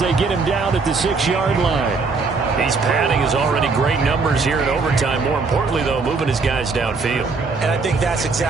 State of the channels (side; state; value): left; quieter; 4.3 dB